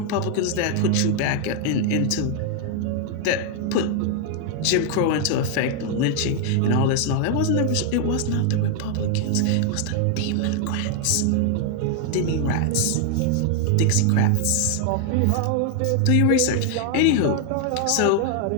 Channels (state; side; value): different; both; correlation 0.00